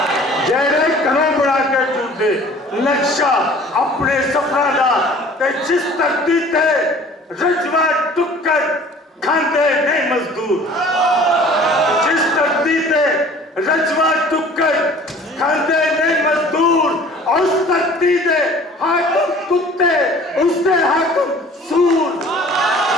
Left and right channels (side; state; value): both; normal; correlation 0.48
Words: जेड़े घरों बना के चुरदे नक्शा अपने सफरा दा ते जिस धरती ते रजवा टुक्कर खांदे नहीं मजदूर जिस धरती ते रजवा टुक्कर खांदे नहीं मजदूर उस धरती दे हाकिम कुत्ते उसदे हाकिम सूर